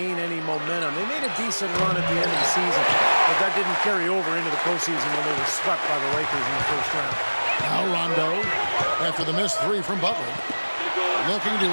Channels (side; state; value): both; inverted; correlation -1.00